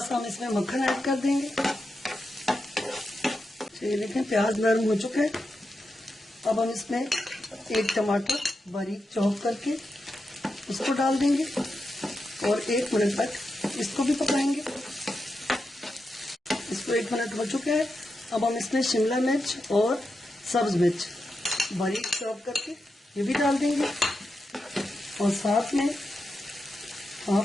हम इसमें मक्खन ऐड कर देंगे। चलिए देखें, प्याज नरम हो चुका है। अब हम इसमें एक टमाटर बारीक चॉप करके उसको डाल देंगे और 1 मिनट तक इसको भी पकाएंगे। इसको 1 मिनट हो चुका है। अब हम इसमें शिमला मिर्च और सब्ज मिर्च बारीक चॉप करके ये भी डाल देंगे, और साथ में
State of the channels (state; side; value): normal; both; correlation 0.88